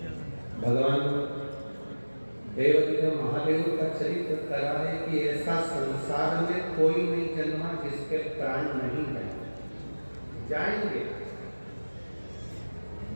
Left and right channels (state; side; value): inverted; both; correlation -1.00